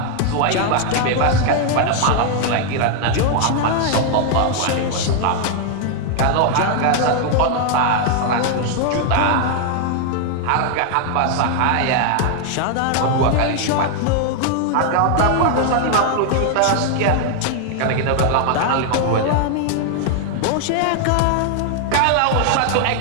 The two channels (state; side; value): different; both; correlation 0.00